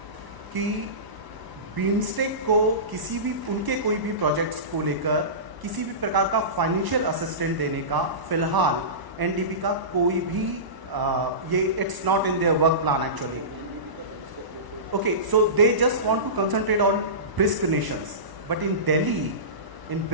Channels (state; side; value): late; left; 1.0 ms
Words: कि बीमस्टेक को किसी भी उनके कोई भी प्रोजेक्ट्स को लेकर किसी भी प्रकार का फाइनेंशियल असिस्टेंट देने का फिलहाल एनडीबी का कोई भी ये it's not in their work plan actually. Okay, so they just want to concentrate on BRICS nations, but in Delhi in